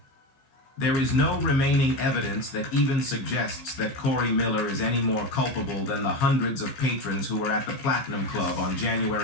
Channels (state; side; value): late; right; 15 ms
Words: "There is no remaining evidence that even suggests that Corey Miller is any more culpable than the hundreds of patrons who were at the Platinum Club on